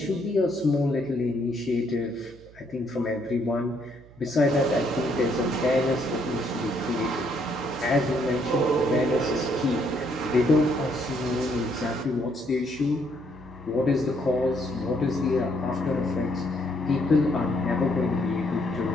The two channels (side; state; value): right; noise; hum, 23 dB below the sound